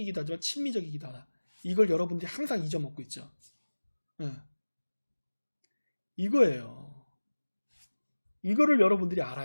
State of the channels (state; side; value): inverted; both; correlation -1.00